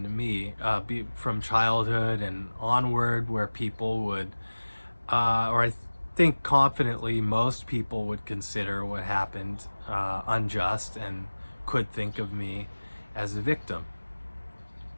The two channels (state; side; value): inverted; both; correlation -1.00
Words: to me from childhood and onward where people would, or I think confidently most people would consider what happened unjust and could think of me as a victim.